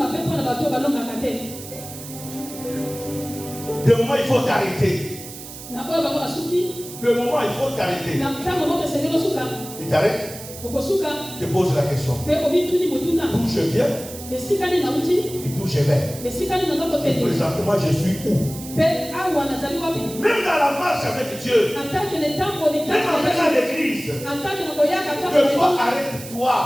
De moment, il faut t'arrêter. De moment, il faut t'arrêter. Il t'arrête. Je pose la question. D'où je viens et d'où je vais. Et présentement, je suis où? Même dans la marche avec Dieu, même en venant à l'église, des fois, arrête-toi.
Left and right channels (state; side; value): noise; right; hiss, 13 dB below the sound